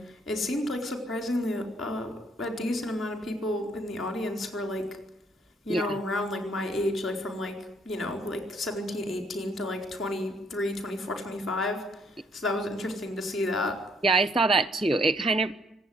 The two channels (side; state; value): both; normal; correlation 0.66